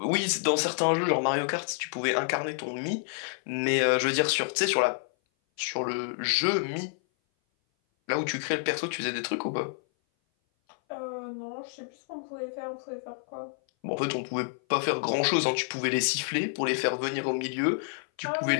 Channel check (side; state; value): right; silent; 57 dB below the other